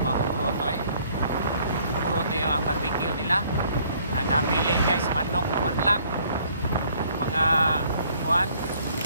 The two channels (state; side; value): inverted; both; correlation -0.61